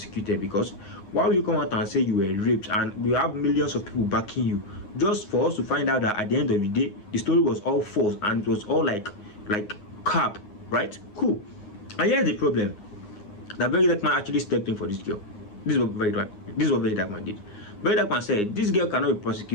because why will you come out and say you were raped and we have millions of people backing you, just for us to find out that at the end of the day the story was all false and it was all like cap, right? Cool. And here's the problem. That Very Dark Man actually stepped in for this girl. This is what Very Dark Man did. Very Dark Man said this girl cannot be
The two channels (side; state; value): right; late; 9.7 ms